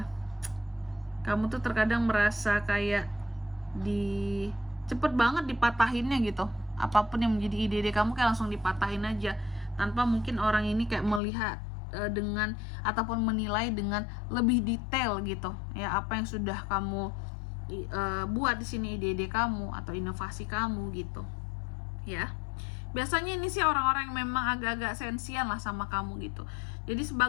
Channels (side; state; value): right; drops out; at 11.2 s